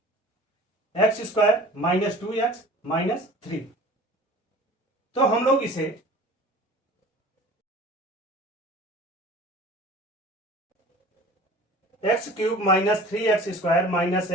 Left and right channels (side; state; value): both; normal; correlation 0.44